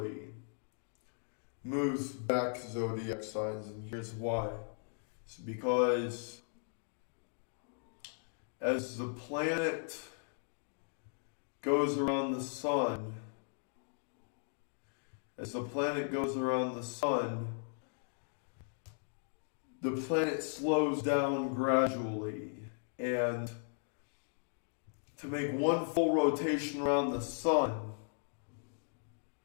moves back zodiac signs, and here's why. It's because as the planet goes around the sun, the planet slows down gradually, and to make one full rotation around the sun,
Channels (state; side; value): silent; right; digital silence